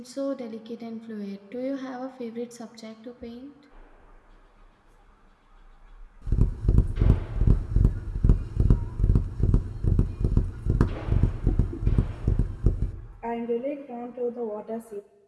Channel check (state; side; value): identical; both; correlation 1.00